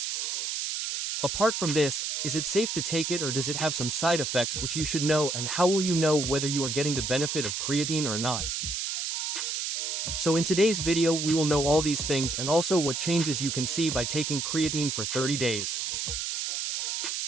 Apart from this, is it safe to take it or does it have some side effects which you should know, and how will you know whether you are getting the benefit of creatine or not? So in today's video we will know all these things and also what changes you can see by taking creatine for 30 days.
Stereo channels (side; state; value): right; noise; hiss, 2 dB below the sound